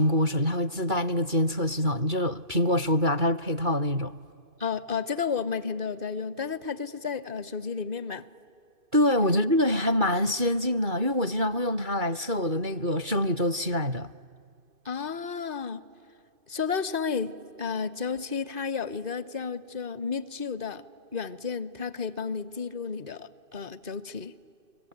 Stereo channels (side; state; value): left; late; 2.3 ms